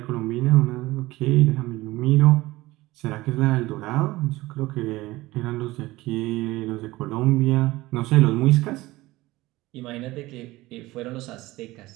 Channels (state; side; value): quieter; left; 18.9 dB